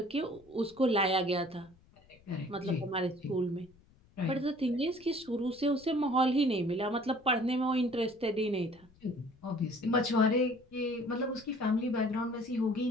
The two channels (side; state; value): left; noise; rumble, 29 dB below the sound